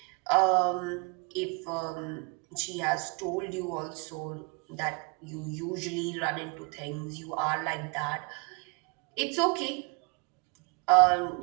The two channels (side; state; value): left; quieter; 32.5 dB